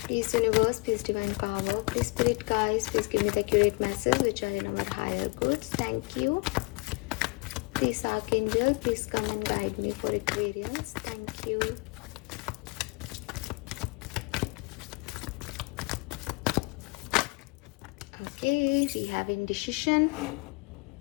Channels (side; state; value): right; quieter; 27.7 dB